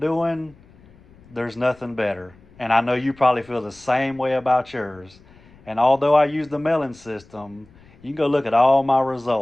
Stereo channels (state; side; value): noise; left; rumble, 27 dB below the sound